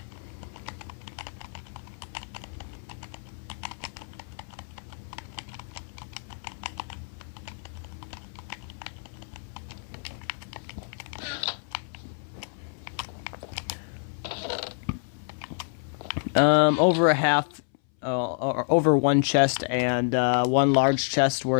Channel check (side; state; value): right; silent; 59 dB below the other